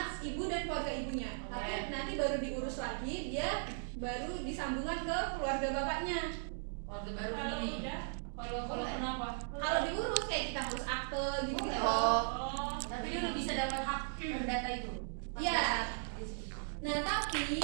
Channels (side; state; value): left; silent; digital silence